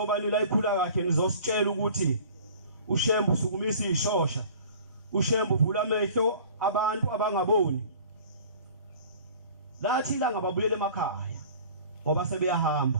nila ikhula kahle nizositshela ukuthi uShembe usukumisa ishosha. uShembe uvula amehlo abantu abangaboni. Lathi la ngababuyele emakhaya ngoba sebeyahamba.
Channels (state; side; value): inverted; both; correlation -0.46